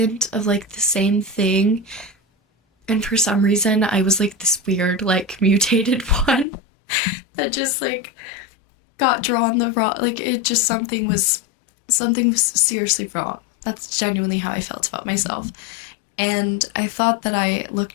of like the same thing. And for some reason I was like this weird like mutated one that just like got drawn the wrong, like it just something was seriously wrong. That's genuinely how I felt about myself. And I thought that I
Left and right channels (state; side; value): drops out; right; at 6.5 s